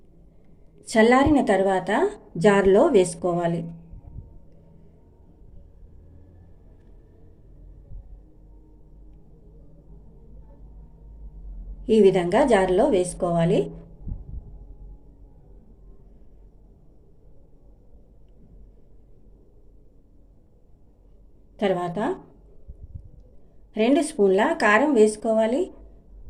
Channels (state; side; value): identical; both; correlation 1.00